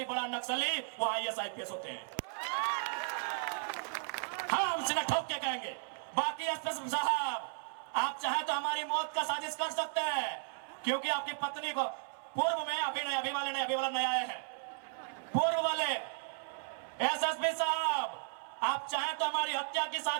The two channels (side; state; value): left; silent; 54 dB below the other